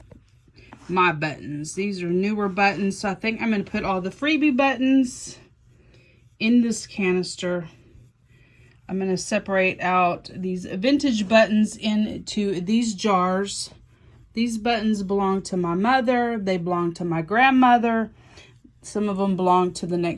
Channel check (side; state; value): both; identical; correlation 1.00